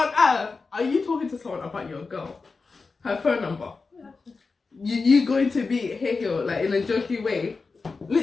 earth are you talking to someone about your girl? Her phone number. You going to be Hae-hyo, like, in a jokey way.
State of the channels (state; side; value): quieter; right; 4.3 dB